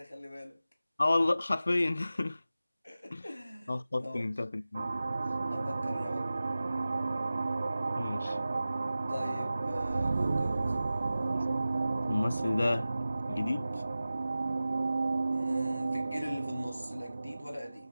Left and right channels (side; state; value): both; inverted; correlation -0.95